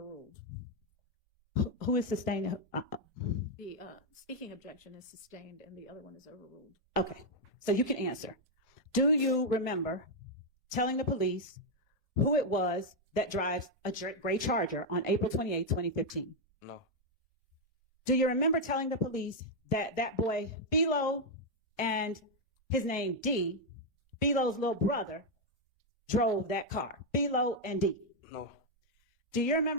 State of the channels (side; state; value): both; normal; correlation 0.00